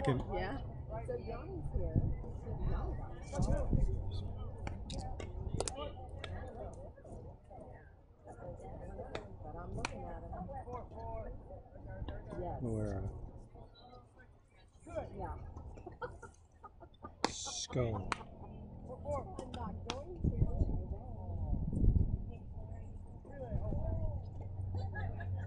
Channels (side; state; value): both; identical; correlation 1.00